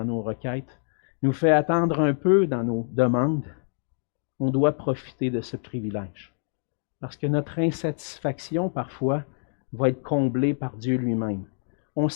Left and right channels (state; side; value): silent; right; 61 dB below the other